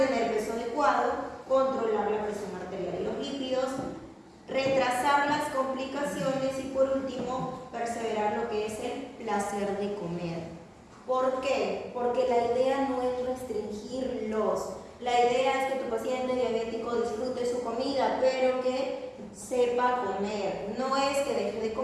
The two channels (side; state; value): both; identical; correlation 1.00